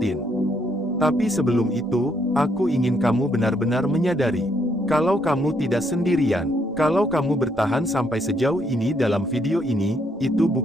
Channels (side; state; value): both; normal; correlation 0.72